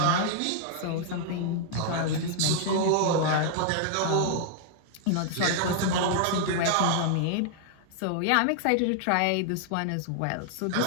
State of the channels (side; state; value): both; different; correlation 0.00